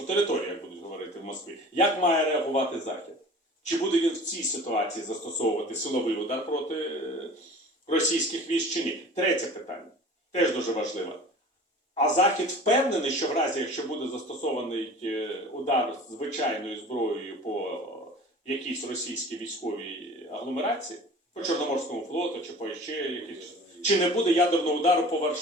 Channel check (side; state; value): both; normal; correlation 0.42